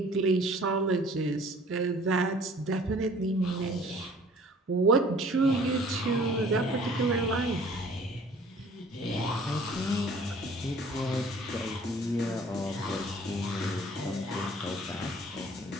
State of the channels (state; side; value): normal; both; correlation 0.52